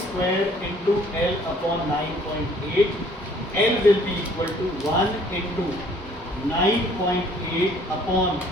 square into L upon 9.8. L will be equal to 1 into 9.8 upon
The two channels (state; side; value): normal; both; correlation 0.58